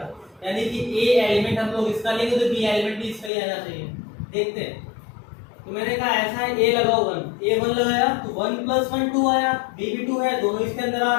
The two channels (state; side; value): drops out; right; at 3.3 s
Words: यानी कि ए एलिमेंट हम लोग इसका लेंगे तो बी एलिमेंट भी इसका ही आना चाहिए। देखते हैं। तो मैंने कहा ऐसा है, ए लगाओ 1, ए 1 लगाया तो 1 + 1 2 आया, बी भी 2 है, दोनों इसके अंदर आ